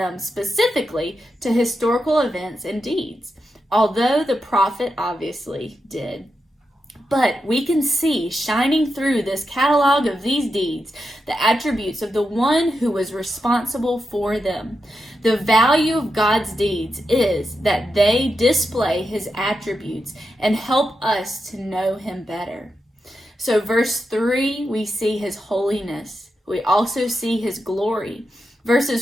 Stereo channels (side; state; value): both; normal; correlation 0.87